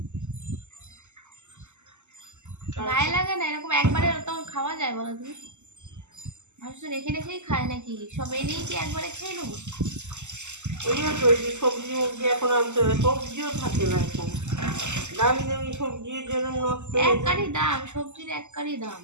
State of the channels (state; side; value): late; left; 0.83 ms